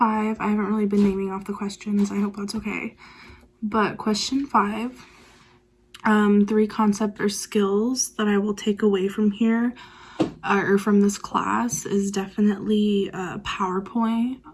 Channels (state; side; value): identical; both; correlation 1.00